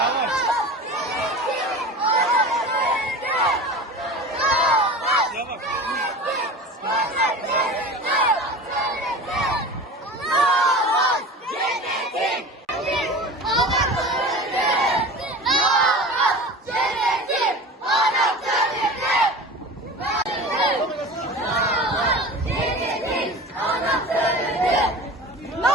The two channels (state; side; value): normal; both; correlation 0.35